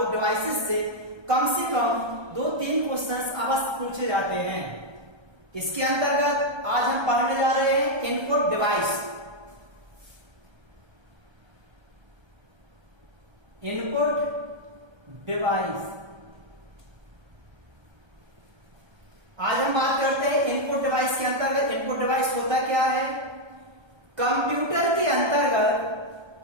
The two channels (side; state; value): left; late; 1.3 ms